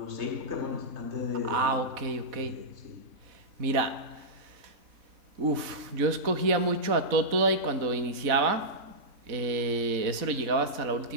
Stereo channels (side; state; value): left; late; 4.0 ms